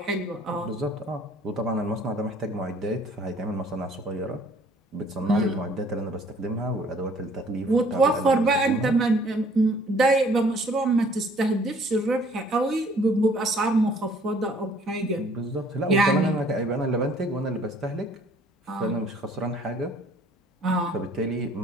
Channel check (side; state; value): both; normal; correlation 0.57